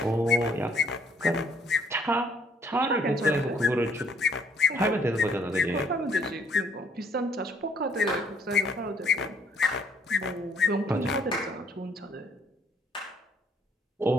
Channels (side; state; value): both; normal; correlation 0.64